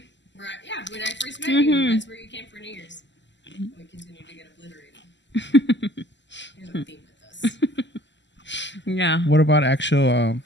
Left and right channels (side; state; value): right; late; 0.53 ms